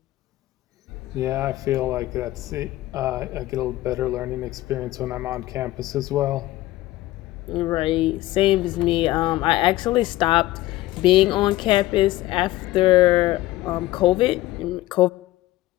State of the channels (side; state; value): right; quieter; 16.6 dB